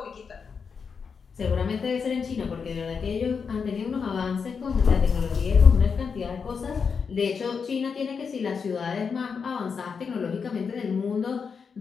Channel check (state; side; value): quieter; right; 5.8 dB